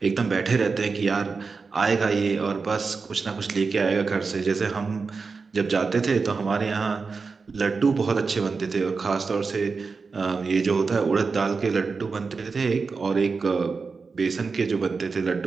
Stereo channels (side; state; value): left; quieter; 4.7 dB